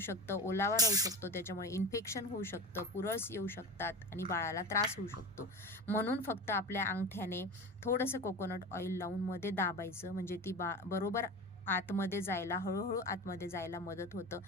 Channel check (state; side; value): normal; both; correlation 0.28